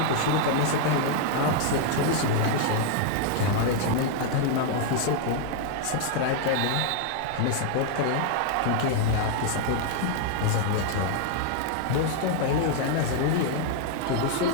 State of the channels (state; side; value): different; both; correlation 0.00